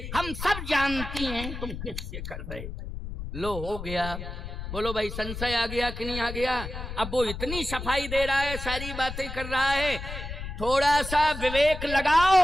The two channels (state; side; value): noise; left; rumble, 8 dB below the sound